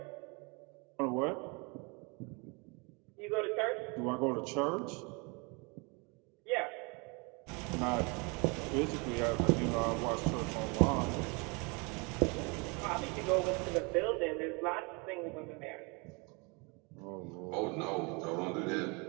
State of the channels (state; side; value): quieter; left; 30.4 dB